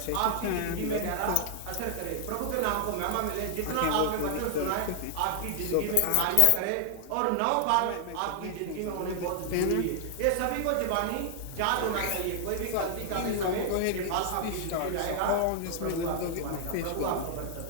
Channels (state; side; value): different; both; correlation 0.00